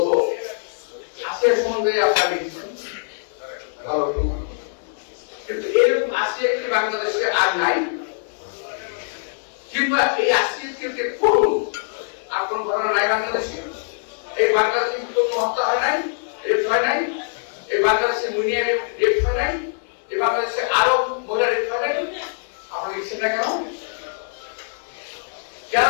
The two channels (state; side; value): silent; right; digital silence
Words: আসিয়ার সম্বন্ধে আপনারা লিখেছেন ভালো, কিন্তু এরকম আসিয়া কি বাংলাদেশে আর নাই? কিংবা এই আসিয়াকে করুন আর কোন ঘটনা নাই বাংলাদেশে? এই বাংলাদেশে কোনো হত্যা হয় নাই, রেপ হয় নাই? এই বাংলাদেশে মুনিয়া রেপ হয় নাই? এই বাংলাদেশে আরো মহিলা রেপ হয় নাই? আপনারা লিখছেন না কেন? কেন